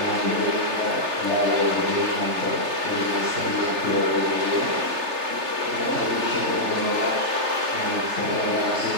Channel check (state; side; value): late; left; 3.3 ms